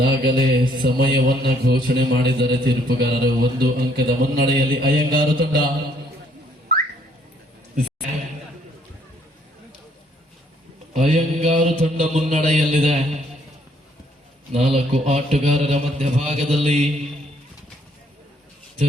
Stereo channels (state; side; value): normal; both; correlation 0.66